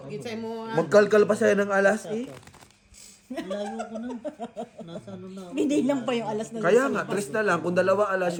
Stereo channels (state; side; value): identical; both; correlation 1.00